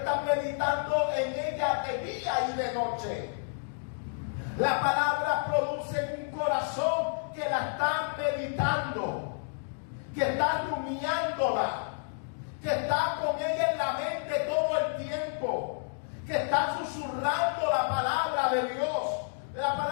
meditando en ella de día y de noche. La palabra produce en un corazón que la está meditando, que está rumiándola, que está con ella en la mente todo el tiempo, que están susurrando la palabra de Dios. La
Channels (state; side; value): silent; right; digital silence